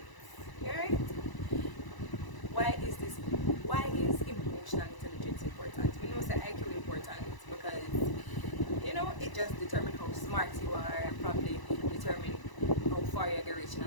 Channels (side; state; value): right; late; 1.0 ms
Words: Alright? Why is emotional intelligence important? We know that IQ important because it just determines how smart you are and probably determine how far you're going to reach